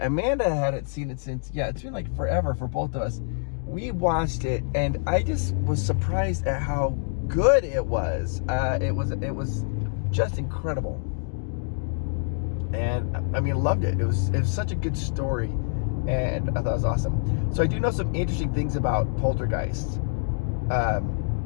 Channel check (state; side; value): silent; right; digital silence